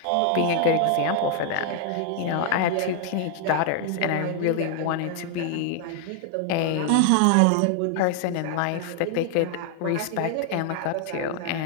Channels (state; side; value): different; both; correlation 0.00